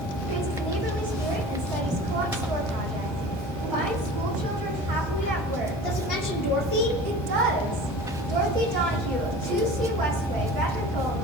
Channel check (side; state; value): both; normal; correlation 0.39